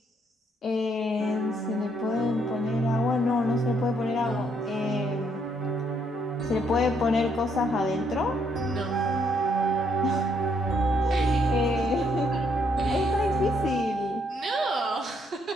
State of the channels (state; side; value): normal; both; correlation 0.72